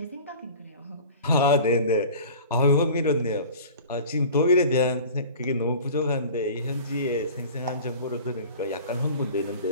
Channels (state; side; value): inverted; both; correlation -0.40